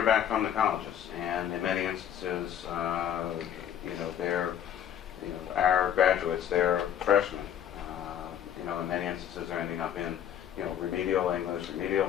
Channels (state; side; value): quieter; right; 9.7 dB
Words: back from the colleges, and in many instances, they're, our graduates, they're freshmen. In many instances, they're ending up in, remedial English, remedial